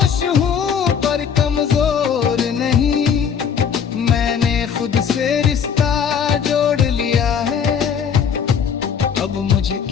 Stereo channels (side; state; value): right; quieter; 7.2 dB